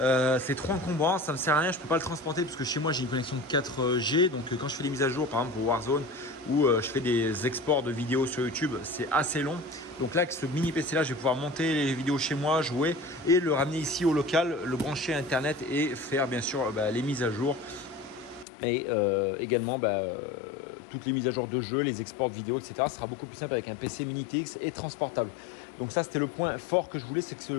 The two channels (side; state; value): right; drops out; at 18.4 s